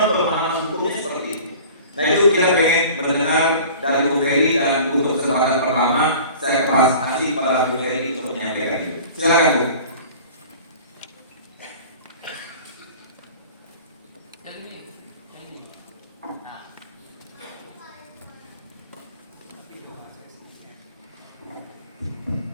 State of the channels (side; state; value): both; inverted; correlation -0.43